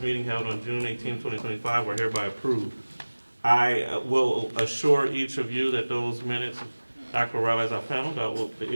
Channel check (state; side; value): inverted; both; correlation -1.00